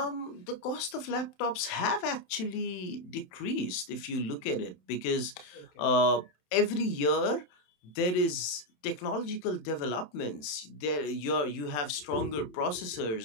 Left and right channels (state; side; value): late; right; 27 ms